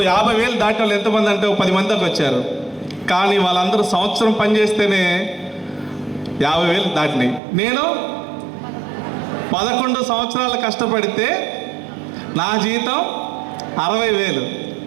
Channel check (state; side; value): drops out; left; at 7.4 s